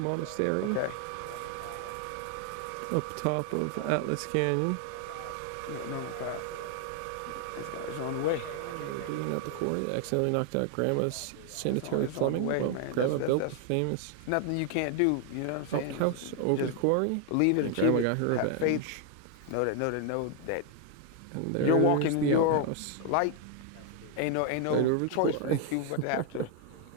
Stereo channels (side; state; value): both; different; correlation 0.00